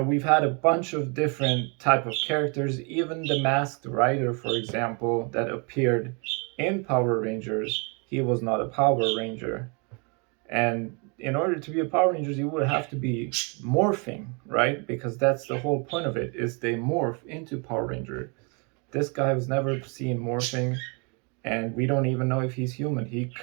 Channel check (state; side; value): quieter; left; 33.7 dB